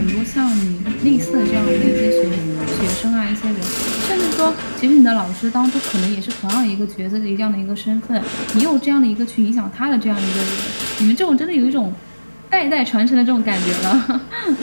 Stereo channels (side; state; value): both; inverted; correlation -1.00